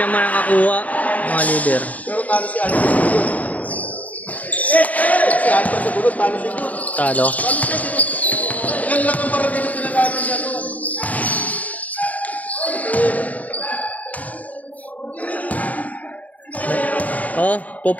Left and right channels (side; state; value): right; late; 0.072 ms